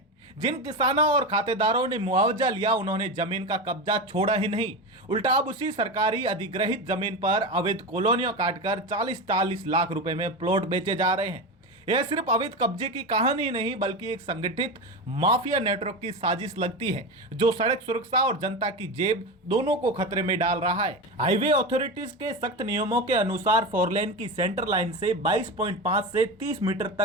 जिन किसानों और खातेदारों ने मुआवजा लिया, उन्होंने जमीन का कब्जा छोड़ा ही नहीं, उल्टा अब उसी सरकारी अधिग्रहित जमीन पर अवैध कॉलोनियां काटकर 40-40 लाख रुपए में प्लॉट बेचे जा रहे हैं। यह सिर्फ अवैध कब्जे की कहानी नहीं, बल्कि एक संगठित माफिया नेटवर्क की साजिश लगती है, जो सड़क सुरक्षा और जनता की जेब दोनों को खतरे में डाल रहा है। हाईवे अथॉरिटीज के सख्त नियमों के अनुसार 4 लेन की सेंटर लाइन से 22.5 से 30 मीटर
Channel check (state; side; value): normal; both; correlation 0.21